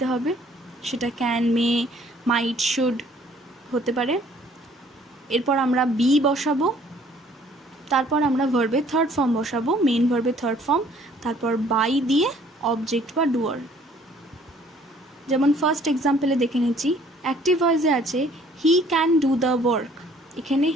হবে, সেটা ক্যান, মে, মাইট, শুড হতে পারে। এরপর আমরা বি বসাবো, তারপর আমরা ভার্বের থার্ড ফর্ম বসাবো, মেইন ভার্বের থার্ড ফর্ম, তারপর বাই দিয়ে অবজেক্ট বা ডুয়ার। যেমন ফার্স্ট এক্সাম্পলে দেখে নিচ্ছি, অ্যাক্টিভ ভয়েসে আছে he can do the work, এখানে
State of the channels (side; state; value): both; normal; correlation 0.58